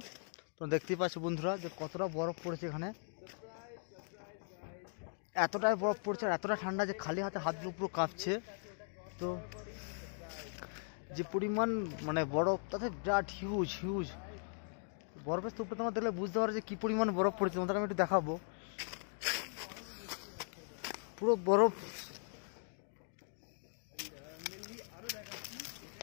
তো দেখতেই পাচ্ছ বন্ধুরা যে কতটা বরফ পড়েছে এখানে। এতটাই বরফ পড়ছে আর এতটা ঠান্ডা যে খালি হাতে হাতগুলো পুরো কাঁপছে। তো যে পরিমাণ মানে বরফ তাতে বিরাট হিউজ হিউজ বরফের স্তূপটা তোমার দেখলে বুঝতে পারো যে কী পরিমাণ বরফ পড়েছে। তোমাদের আমি একটু দেখাবো। পুরো বরফ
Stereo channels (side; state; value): right; silent; 52 dB below the other